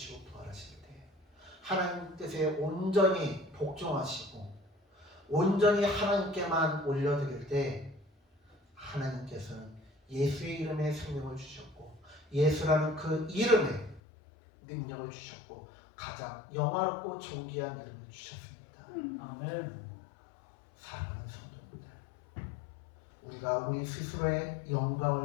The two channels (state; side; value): drops out; right; at 14.0 s